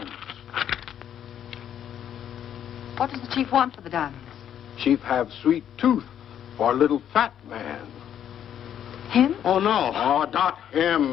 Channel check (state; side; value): quieter; right; 9.8 dB